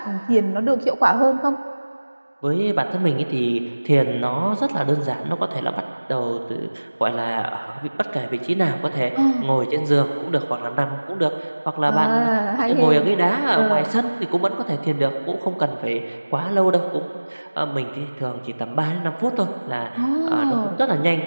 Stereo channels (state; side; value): inverted; both; correlation -1.00